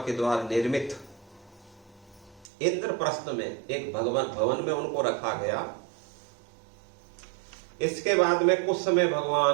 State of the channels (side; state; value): left; drops out; at 2.5 s